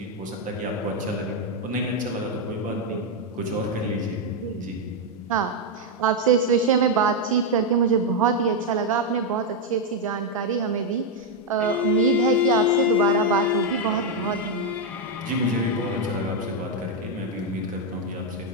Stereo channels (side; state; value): both; normal; correlation 0.01